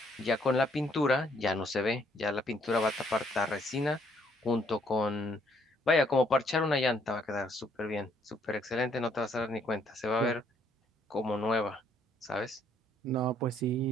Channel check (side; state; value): both; normal; correlation 0.67